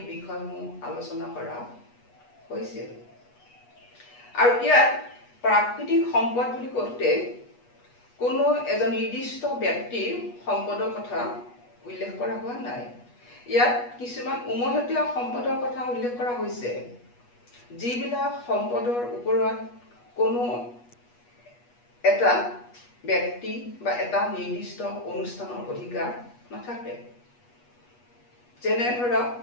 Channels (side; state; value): right; late; 8.3 ms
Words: বিষয়সমূহ আলোচনা কৰা হৈছিল। আৰু ইয়াত প্ৰাকৃতিক সম্পদ বুলি কওঁতে কোনো এজন নিৰ্দিষ্ট ব্যক্তিৰ সম্পদৰ কথা উল্লেখ কৰা হোৱা নাই। ইয়াত কিছুমান উমৈহতীয়া সম্পদৰ কথা উল্লেখ কৰা হৈছে, যিবিলাক সম্পদৰ ওপৰত কোনো এটা ব্যক্তি বা এটা নিৰ্দিষ্ট অনুষ্ঠানৰ অধিকাৰ নাথাকে। যেনে ধৰক